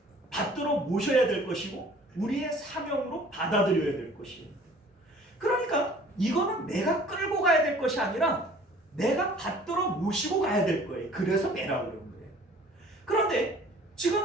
받들어 모셔야 될 것이고, 우리의 사명으로 받아들여야 될 것이에요. 그러니까 이거는 내가 끌고 가야 될 것이 아니라 내가 받들어 모시고 가야 될 거예요. 그래서 매라고 그런 거예요. 그런데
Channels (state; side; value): normal; both; correlation 0.51